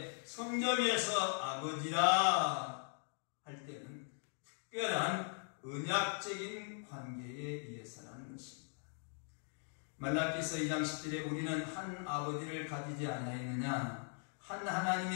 성경에서 아버지라 할 때는 특별한 언약적인 관계에 의해서라는 것입니다. 말라기서 2장 10절에 우리는 한 아버지를 가지지 않았느냐, 한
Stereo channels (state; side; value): silent; right; 51 dB below the other